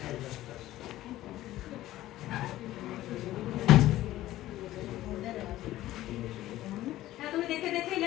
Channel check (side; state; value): right; quieter; 15.1 dB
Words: তুমি দেখে দেখেই